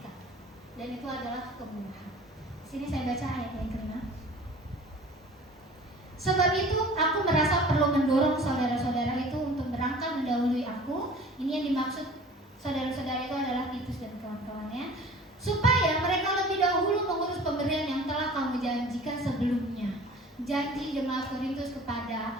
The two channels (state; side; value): normal; both; correlation 0.45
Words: dan itu adalah kemurahan. Sini saya baca ayat yang ke-5. Sebab itu aku merasa perlu mendorong saudara-saudara itu untuk berangkat mendahului aku. Ini yang dimaksud saudara-saudara itu adalah Titus dan kawan-kawannya, supaya mereka lebih dahulu mengurus pemberian yang telah kamu janjikan sebelumnya. Janji jemaat Korintus